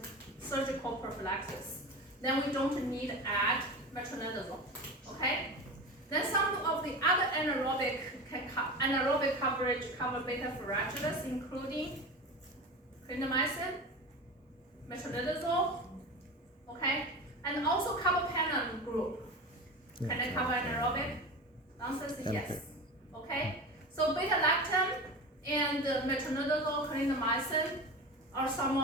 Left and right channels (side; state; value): both; normal; correlation 0.29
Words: surgical prophylaxis, then we don't need to add metronidazole, okay? Then some of the other anaerobic coverage cover beta fragilis, including clindamycin, metronidazole, okay? And also carbapenem group. Can I cover anaerobic? The answer is yes. Okay? So beta-lactam and metronidazole, clindamycin are some